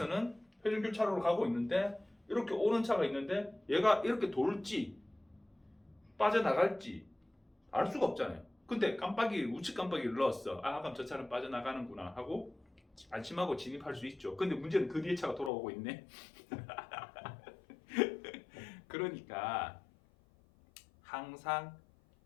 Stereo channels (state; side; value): drops out; right; at 15.5 s